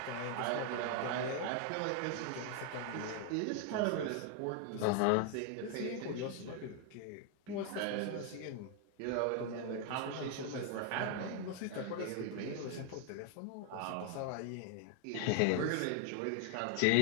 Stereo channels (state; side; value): different; both; correlation 0.00